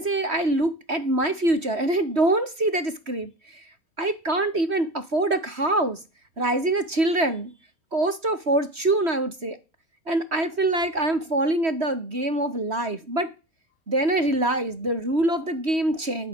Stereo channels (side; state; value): left; late; 3.1 ms